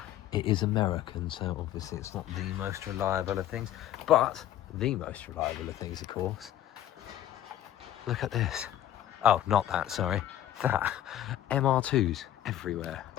it is American, so obviously it's not the most reliable of things, but the most reliable of things, of course. Look at this. Oh, not that, sorry. That. MR2s everywhere.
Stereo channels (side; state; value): right; quieter; 12.1 dB